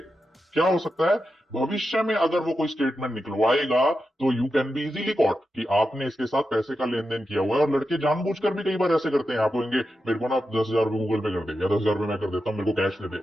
क्या हो सकता है भविष्य में अगर वो कोई स्टेटमेंट निकलवाएगा तो you can be easily caught कि आपने इसके साथ पैसे का लेन देन किया हुआ है। और लड़के जानबूझकर भी कई बार ऐसे करते हैं, आप कहेंगे मेरे को ना 10,000 रुपए गूगल पे कर दे, या 10,000 रुपए मैं कर देता हूं, मेरे को कैश दे दे,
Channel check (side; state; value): both; normal; correlation 0.89